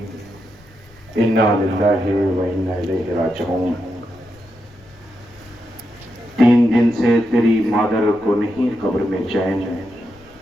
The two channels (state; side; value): noise; left; rumble, 26 dB below the sound